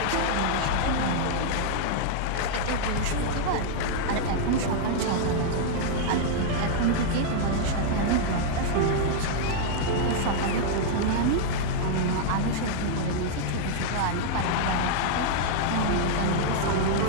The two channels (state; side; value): different; both; correlation -0.01